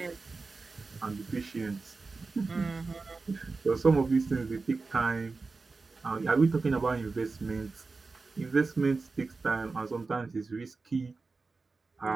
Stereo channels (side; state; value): left; quieter; 4.0 dB